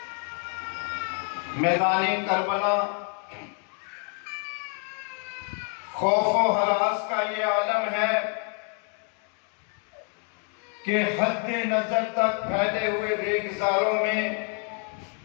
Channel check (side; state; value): right; quieter; 38.1 dB